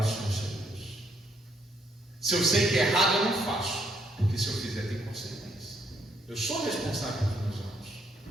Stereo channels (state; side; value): normal; both; correlation 0.71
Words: o Senhor seu Deus. Se eu sei que é errado, eu não faço, porque se eu fizer tem consequência. Eu sou responsável pelos meus atos.